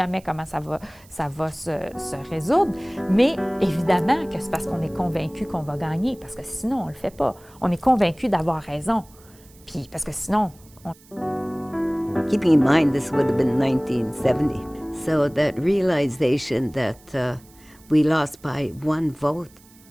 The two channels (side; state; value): right; noise; hiss, 27 dB below the sound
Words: comment ça va se résoudre. Mais évidemment que c'est parce qu'on est convaincu qu'on va gagner, parce que sinon, on le fait pas. On est convaincu d'avoir raison. Puis, parce que sinon... Keeping in mind this would have been 1970. So that realization that we lost by one vote.